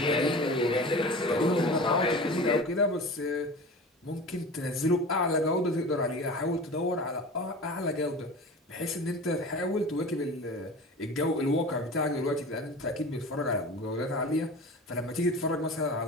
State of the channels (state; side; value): normal; both; correlation 0.35